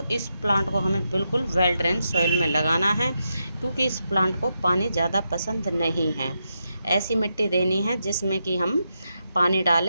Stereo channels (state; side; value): inverted; both; correlation -0.85